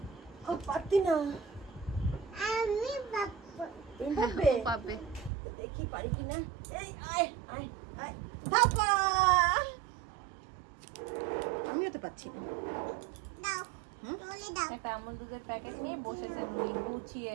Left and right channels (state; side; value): drops out; left; at 5.3 s